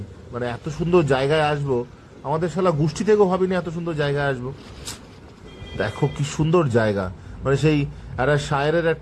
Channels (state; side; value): identical; both; correlation 1.00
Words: মানে এত সুন্দর জায়গায় আসবো, আমাদের শালা গোষ্ঠী থেকেও ভাবিনি এত সুন্দর জায়গায় আসবো। দেখো কি সুন্দর জায়গা, মানে সেই একটা শায়েরের